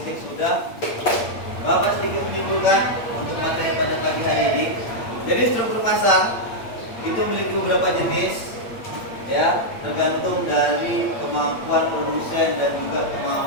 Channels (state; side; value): late; right; 8.6 ms